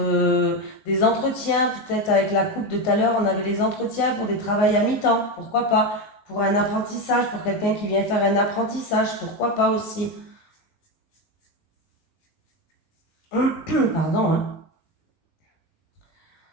des entretiens, peut-être avec la coupe de tout à l'heure, on avait les entretiens pour des travails à mi-temps, pourquoi pas. Pour un apprentissage, pour quelqu'un qui vient faire un apprentissage, pourquoi pas aussi. Pardon. Hein.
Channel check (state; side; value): late; right; 19 ms